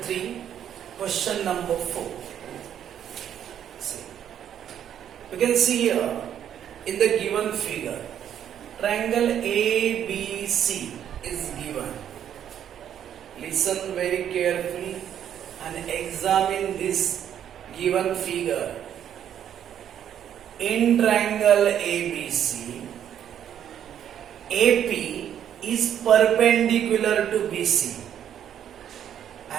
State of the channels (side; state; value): left; quieter; 9.7 dB